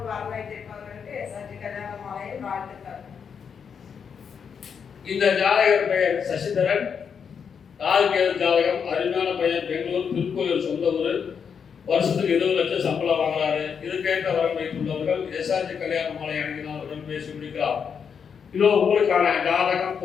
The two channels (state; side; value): quieter; right; 6.8 dB